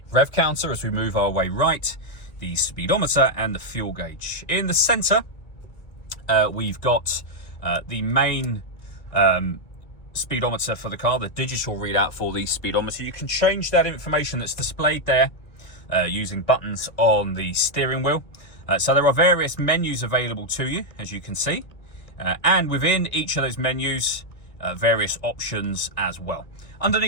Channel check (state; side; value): late; right; 1.9 ms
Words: rev counter as we move our way right, the speedometer and the fuel gauge. In the center, we've got the main speedometer for the car, the digital readout for the speedometer. You can change that information that's displayed there using buttons on the steering wheel. So there are various menus available to you, as you can see, and within each of those menus, various options as well.